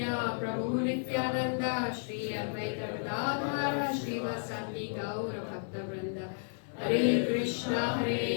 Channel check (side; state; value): right; silent; 56 dB below the other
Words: Prabhu Nityananda Shri Advaita Gadadhara Shri Vasati Gaura Bhakta Vrinda Hare Krishna